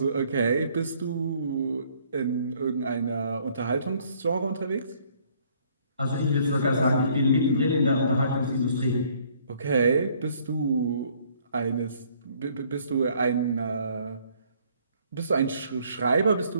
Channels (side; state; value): both; inverted; correlation -0.63